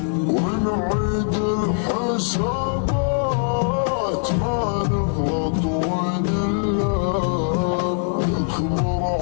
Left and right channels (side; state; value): right; silent; 64 dB below the other